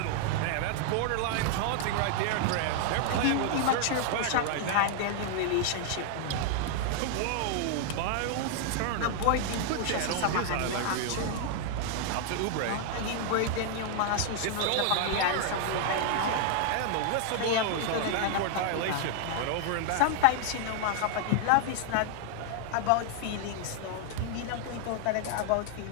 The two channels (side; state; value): both; different; correlation 0.00